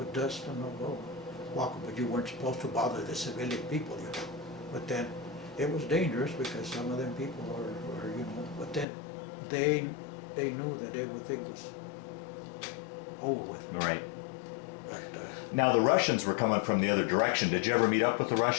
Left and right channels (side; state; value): right; drops out; at 8.8 s